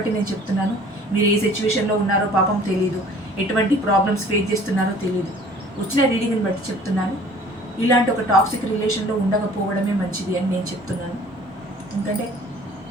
నేను చెప్తున్నాను. మీరు ఏ సిచ్యువేషన్లో ఉన్నారో పాపం తెలీదు, ఎటువంటి ప్రాబ్లమ్స్ ఫేస్ చేస్తున్నారో తెలీదు. వచ్చిన రీడింగ్ని బట్టి చెప్తున్నాను. ఇలాంటి ఒక టాక్సిక్ రిలేషన్లో ఉండకపోవడమే మంచిది అని నేను చెప్తున్నాను. ఎందుకంటే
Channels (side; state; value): both; normal; correlation 0.51